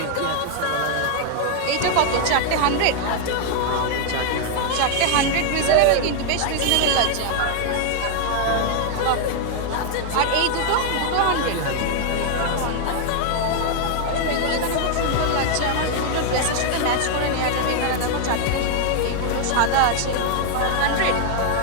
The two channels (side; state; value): both; different; correlation 0.00